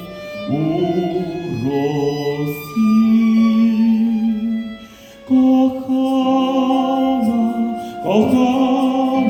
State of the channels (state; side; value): identical; both; correlation 1.00